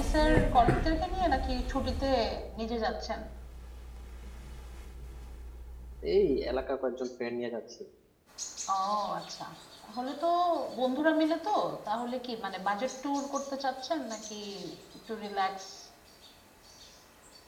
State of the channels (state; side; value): identical; both; correlation 1.00